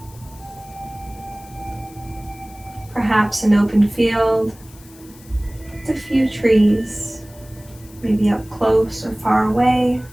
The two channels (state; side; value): noise; left; hiss, 23 dB below the sound